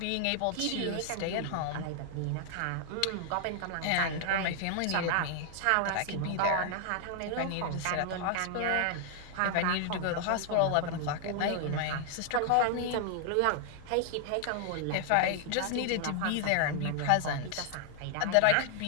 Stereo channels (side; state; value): both; different; correlation 0.00